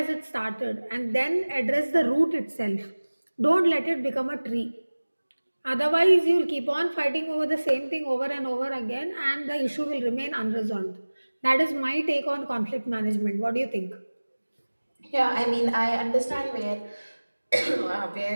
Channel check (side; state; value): both; inverted; correlation -1.00